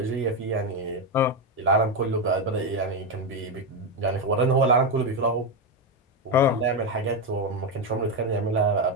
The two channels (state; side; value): normal; both; correlation 0.08